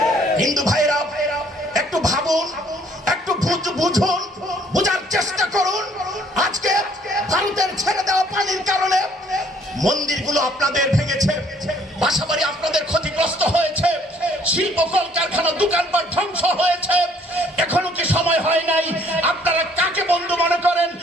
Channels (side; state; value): both; normal; correlation 0.61